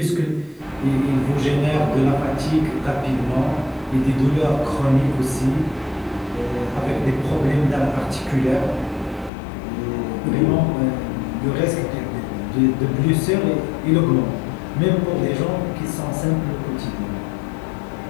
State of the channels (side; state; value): right; drops out; at 9.3 s